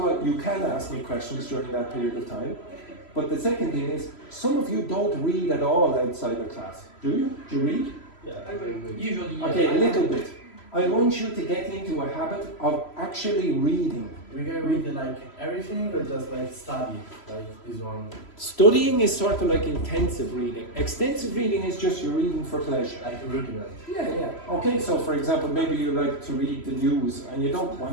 all, you can ask me questions during that period of time. But the second thing is, some of you don't read at all outside of class. Do you? Do you read? Yeah, Usually, yeah. Okay, a little bit. I want you to get into a habit of actually reading. We can read like everything or just like study, like this one? Studying is sort of like intensive reading. Extensive reading is just you're reading for pleasure. Like reading it. Yeah. Okay, so for example, maybe you like to read the news and you don't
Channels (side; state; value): right; late; 3.0 ms